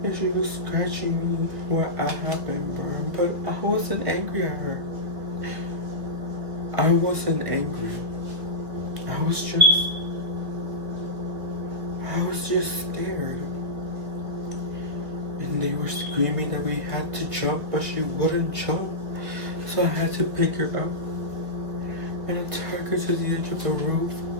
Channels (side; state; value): left; late; 1.4 ms